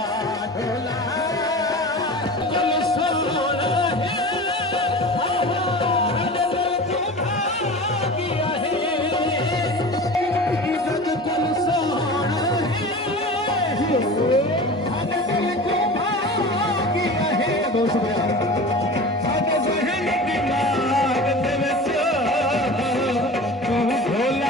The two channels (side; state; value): both; normal; correlation 0.34